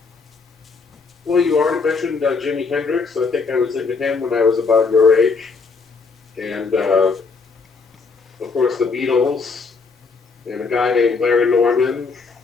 Well, you already mentioned Jimi Hendrix. I think I was into him when I was about your age. And, of course, the Beatles, and a guy named Larry Norman,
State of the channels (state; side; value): quieter; right; 4.6 dB